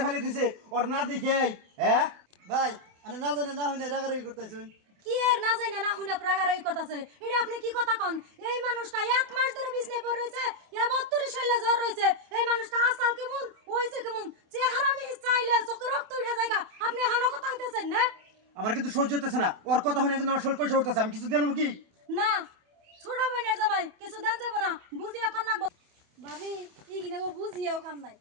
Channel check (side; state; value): left; late; 28 ms